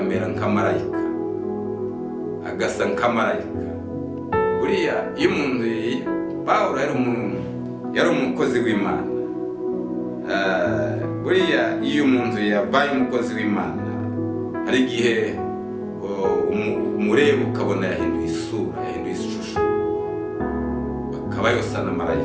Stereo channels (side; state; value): both; identical; correlation 1.00